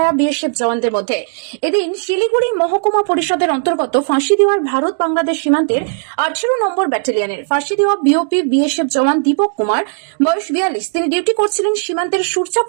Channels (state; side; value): silent; left; digital silence